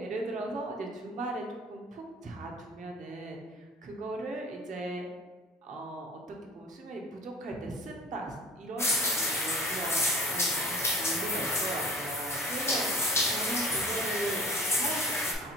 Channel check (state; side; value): normal; both; correlation 0.41